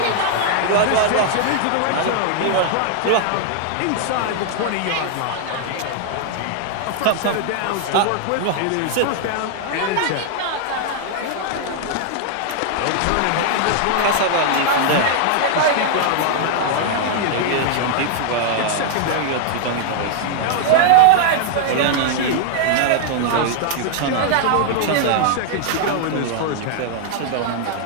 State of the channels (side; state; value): both; different; correlation 0.00